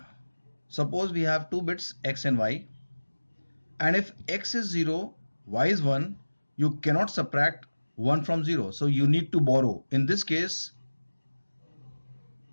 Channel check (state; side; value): inverted; both; correlation -1.00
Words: suppose we have two bits x and y, and if x is 0, y is 1, you cannot subtract 1 from 0, so you need to borrow. In this case,